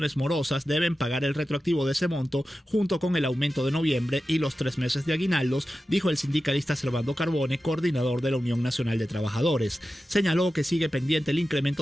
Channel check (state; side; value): normal; both; correlation 0.93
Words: morosas deben pagar el retroactivo de ese monto junto con el aumento de noviembre y los 3 meses de aguinaldos, dijo el sindicalista Servando Carbone, coordinador de la Unión Nacional de Trabajadores. Señaló que sigue pendiente el